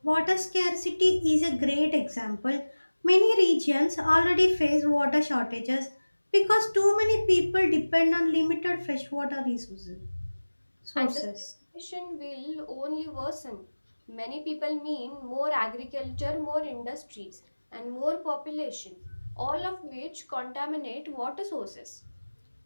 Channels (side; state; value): both; inverted; correlation -1.00